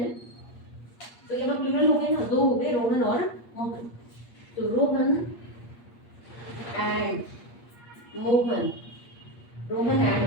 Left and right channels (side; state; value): right; late; 8.5 ms